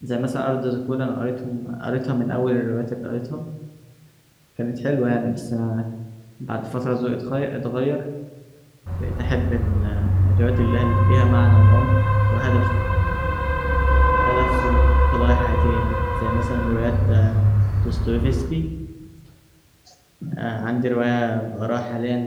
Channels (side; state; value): both; identical; correlation 1.00